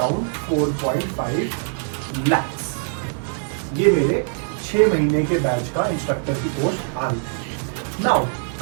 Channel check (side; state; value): left; silent; 64 dB below the other